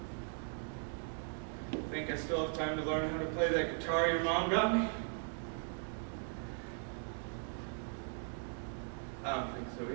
Think I still have time to learn how to play that guitar your mom got me? I don't think so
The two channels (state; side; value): silent; left; 52 dB below the other